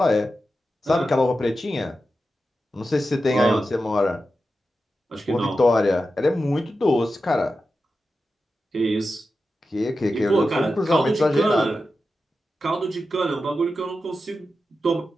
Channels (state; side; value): normal; both; correlation 0.91